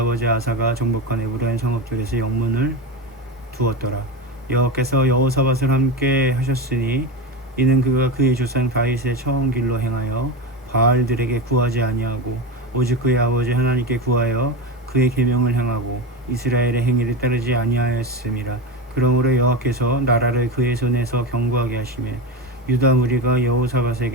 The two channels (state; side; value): normal; both; correlation 0.19